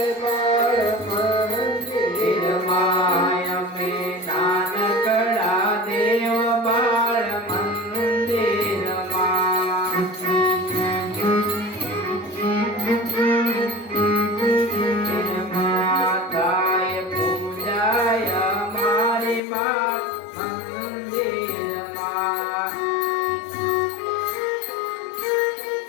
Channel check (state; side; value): drops out; right; at 19.4 s